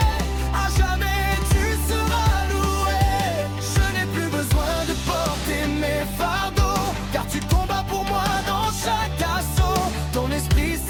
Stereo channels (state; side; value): identical; both; correlation 1.00